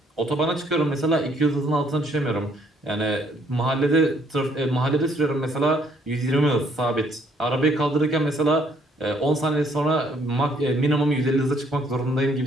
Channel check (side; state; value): both; normal; correlation 0.66